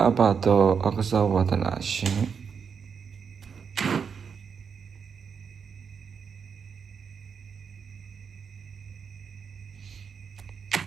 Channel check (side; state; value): left; quieter; 6.4 dB